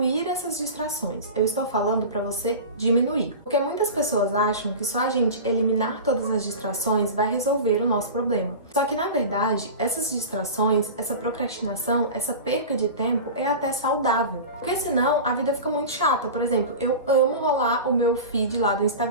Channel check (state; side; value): inverted; both; correlation -0.31